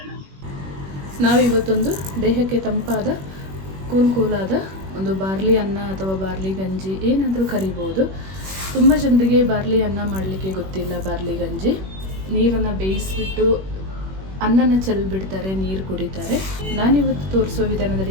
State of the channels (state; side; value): late; left; 21 ms